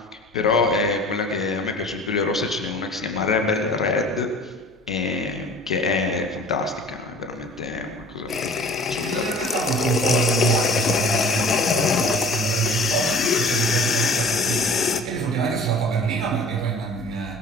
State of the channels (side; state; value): both; normal; correlation 0.45